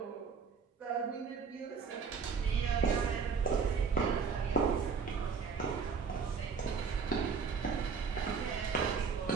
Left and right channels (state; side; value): quieter; left; 5.6 dB